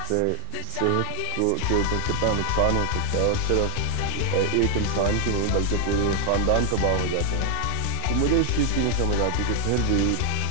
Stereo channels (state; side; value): different; both; correlation -0.01